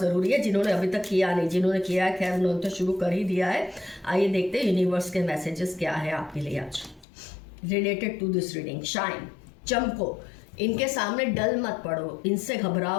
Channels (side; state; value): right; drops out; at 7.1 s